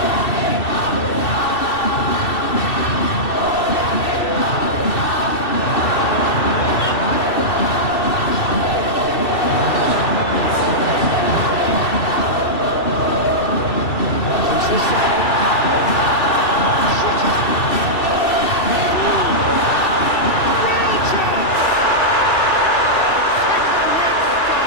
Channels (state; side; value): late; right; 2.7 ms